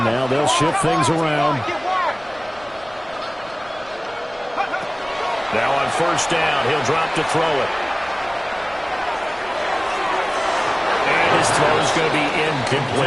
now they'll shift things around. Now on first down, he'll drop to throw it. And his throw is going to be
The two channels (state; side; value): noise; right; rumble, 26 dB below the sound